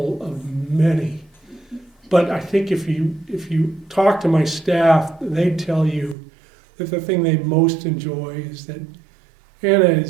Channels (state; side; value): drops out; left; at 6.2 s